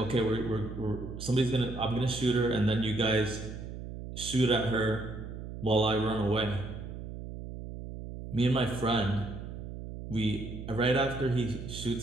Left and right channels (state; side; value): noise; right; hum, 9 dB below the sound